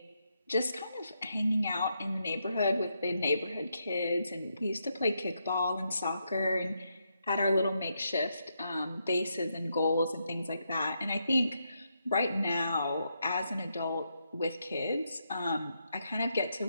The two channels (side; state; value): both; inverted; correlation -0.81